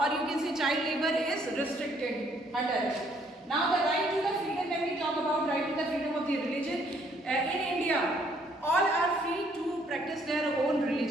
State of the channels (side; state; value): both; normal; correlation 0.66